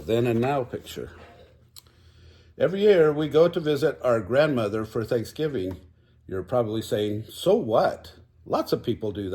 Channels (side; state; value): both; identical; correlation 1.00